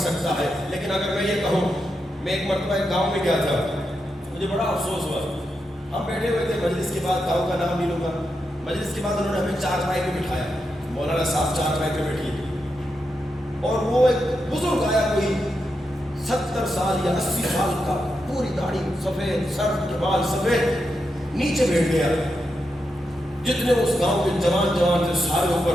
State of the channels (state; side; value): normal; both; correlation 0.86